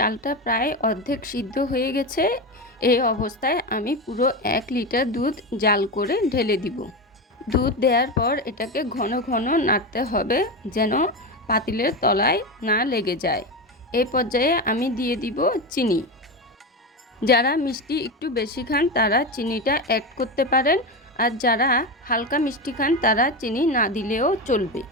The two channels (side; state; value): both; normal; correlation 0.18